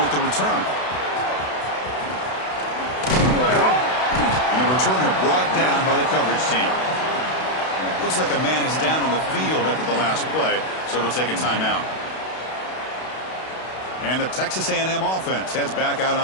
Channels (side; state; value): right; late; 32 ms